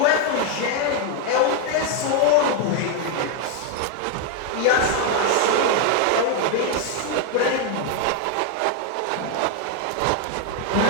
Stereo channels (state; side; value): different; both; correlation 0.01